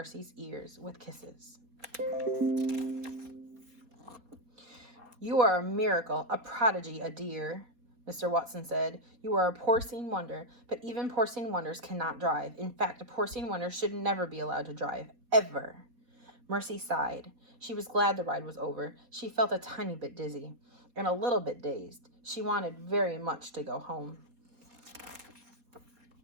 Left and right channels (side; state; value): left; late; 4.2 ms